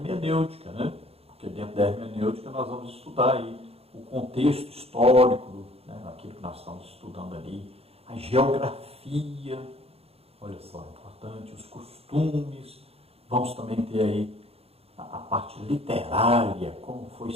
né? Porque dentro da hermenêutica nós vamos estudar aí o contexto histórico, né, aquilo que nós estamos estudando ali, a geografia, olha só, importante, os costumes, vamos também ter aí a parte literária, como foi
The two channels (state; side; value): late; left; 0.29 ms